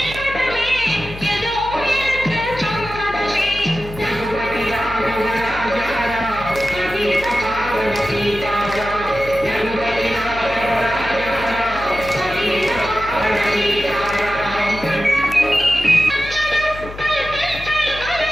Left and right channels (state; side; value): noise; left; hum, 13 dB below the sound